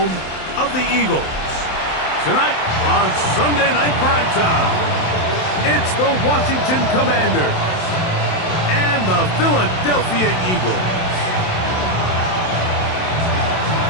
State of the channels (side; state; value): right; late; 27 ms